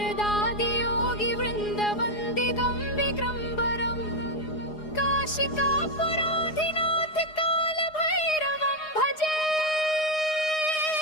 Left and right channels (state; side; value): late; right; 4.8 ms